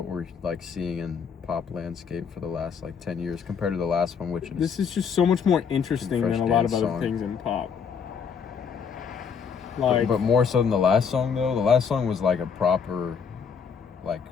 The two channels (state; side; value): quieter; right; 6.4 dB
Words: we're like seeing in pop landscape for the last like 10 years compared to the last one, which is this is just so much more interesting than a lot of other things in pop. Like, but more so than the last song though. The last song was like a proper, like,